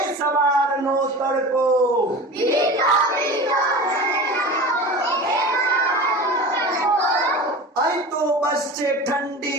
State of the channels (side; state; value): both; normal; correlation 0.33